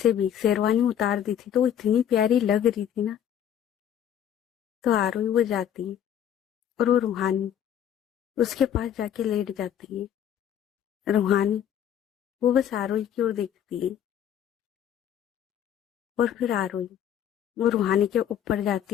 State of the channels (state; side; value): quieter; right; 9.8 dB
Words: भी शेरवानी उतार दी थी, तो वो इतनी प्यारी लग रही थी ना। तो आरोही वो जाती है, और वो रूहानी उसके पास जाके लेट जाती है। रूहानी वो बस आरोही की ओर देखती है, और फिर आरोही वो रूहानी के ऊपर जाती